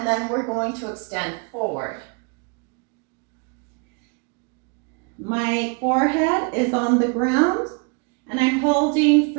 then we're going to extend forward. My forehead is on the ground, and I'm holding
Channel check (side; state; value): left; quieter; 34.4 dB